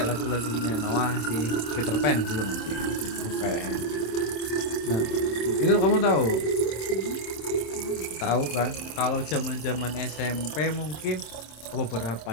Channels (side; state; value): right; late; 27 ms